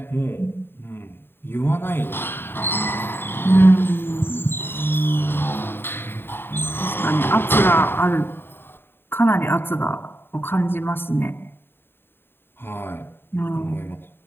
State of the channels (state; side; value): late; right; 0.11 ms